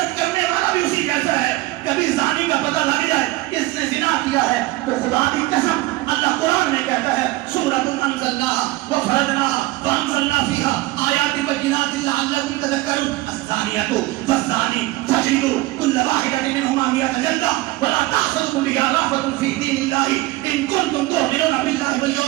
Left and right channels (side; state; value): left; quieter; 19.0 dB